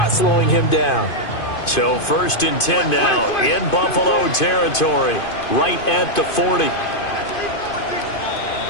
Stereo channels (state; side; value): late; right; 2.5 ms